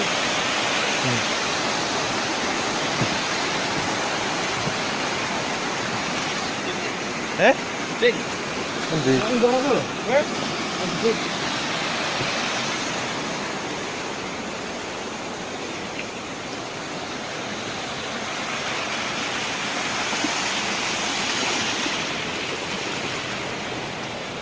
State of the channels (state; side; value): identical; both; correlation 1.00